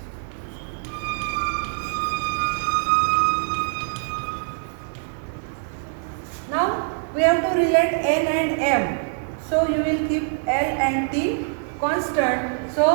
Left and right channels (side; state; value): left; silent; digital silence